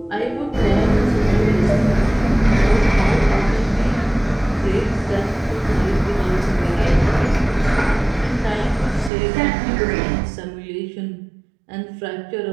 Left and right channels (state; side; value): drops out; left; at 9.1 s